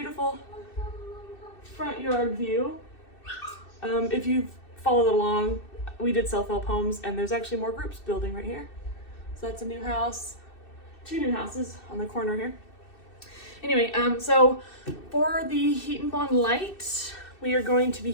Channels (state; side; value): late; right; 2.6 ms